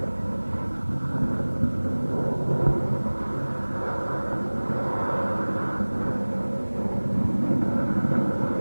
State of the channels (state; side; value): inverted; both; correlation -1.00